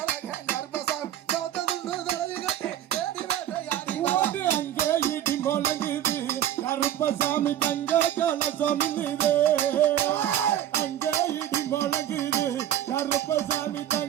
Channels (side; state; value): left; quieter; 11.6 dB